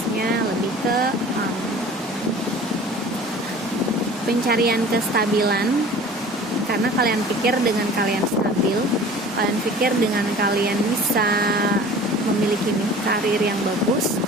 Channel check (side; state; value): both; normal; correlation 0.43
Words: lebih ke pencarian kestabilan, karena kalian pikir dengan kalian stabil, kalian pikir dengan kalian bisa memiliki karir yang bagus,